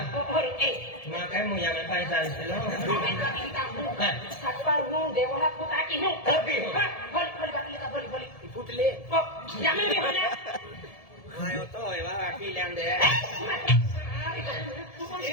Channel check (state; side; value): late; right; 1.7 ms